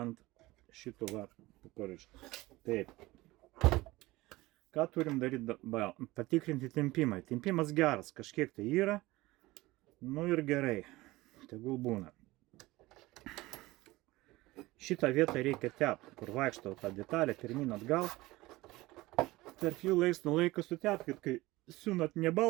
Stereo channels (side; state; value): left; quieter; 19.6 dB